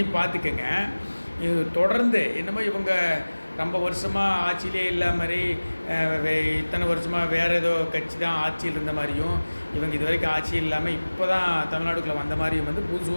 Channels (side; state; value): both; inverted; correlation -1.00